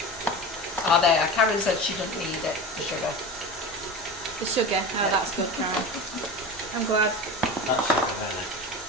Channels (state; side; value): normal; both; correlation 0.29